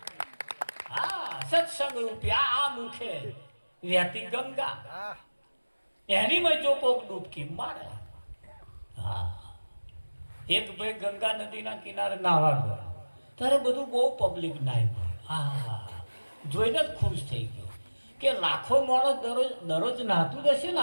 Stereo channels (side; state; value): both; inverted; correlation -1.00